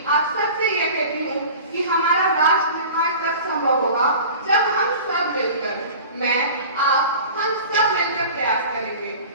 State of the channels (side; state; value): both; inverted; correlation -0.39